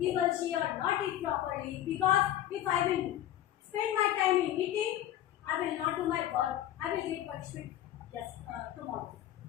will she or not eat properly. Because if I will spend my time in eating, I will not do my work. I will get punishment tomorrow.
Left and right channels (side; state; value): right; quieter; 12.5 dB